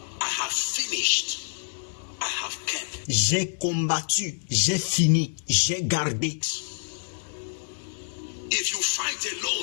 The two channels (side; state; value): right; silent; digital silence